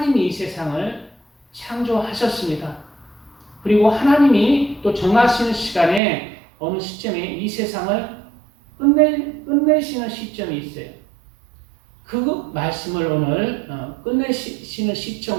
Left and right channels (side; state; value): left; drops out; at 6.0 s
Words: 이 세상을 창조하셨습니다. 그리고 하나님이 또 정하시는 시간에 어느 시점에 이 세상을 끝내시는 시점이 있어요. 그 말씀을 오늘 끝내시는